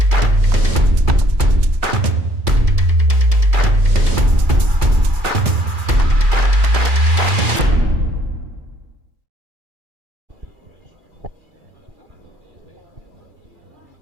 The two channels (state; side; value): late; left; 2.4 ms